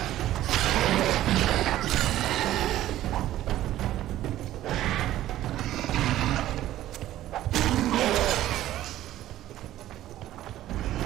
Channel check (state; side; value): quieter; left; 13.8 dB